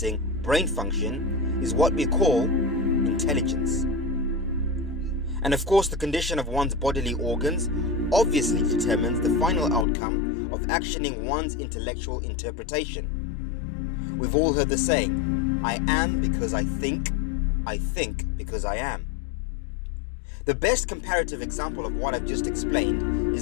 brain function, is what we call intelligence. And of course, the condition of one's bodily organs obviously determines the final outcome of actioning one's intellectual interpretation. We've all heard the saying, I am because I think because I am. The best comparative example of what I've just explained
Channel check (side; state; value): right; drops out; at 9.9 s